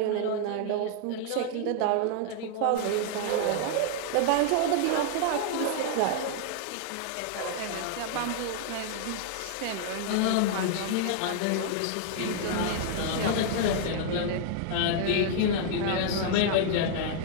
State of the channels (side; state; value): both; different; correlation -0.01